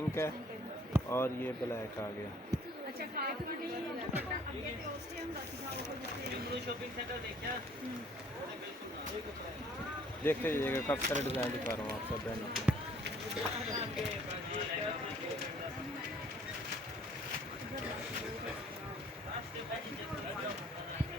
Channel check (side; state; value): both; normal; correlation 0.57